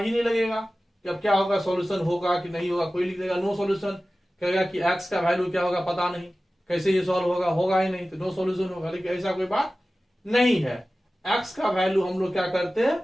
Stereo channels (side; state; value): both; normal; correlation 0.96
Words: ही नहीं लगेगा कि अब क्या होगा, सॉल्यूशन होगा कि नहीं होगा। कोई लिख देगा नो सॉल्यूशन, कहेगा कि x का वैल्यू क्या होगा पता नहीं, कैसे ये सॉल्व होगा, होगा ही नहीं, तो नो सॉल्यूशन होगा। लेकिन ऐसा कोई बात नहीं है। x का वैल्यू हम लोग क्या करते हैं,